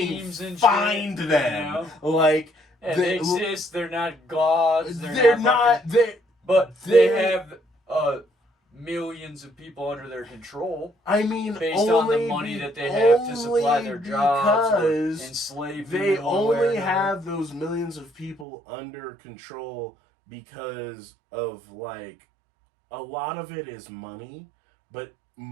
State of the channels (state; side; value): drops out; left; at 18.4 s